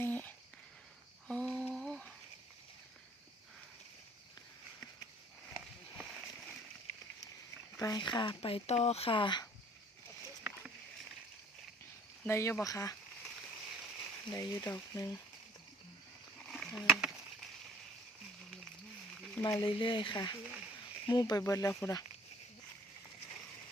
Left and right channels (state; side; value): normal; both; correlation 0.54